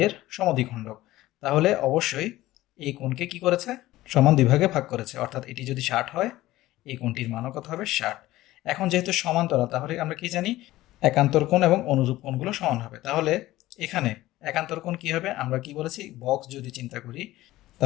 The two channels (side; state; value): right; quieter; 16.5 dB